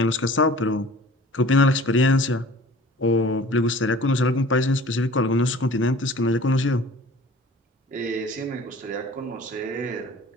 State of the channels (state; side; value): normal; both; correlation 0.46